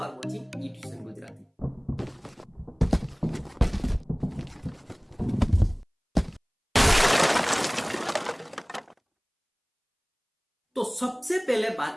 वाचिंग ईट्यूशन गुजराती। तो सबसे पहले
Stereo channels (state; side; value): identical; both; correlation 1.00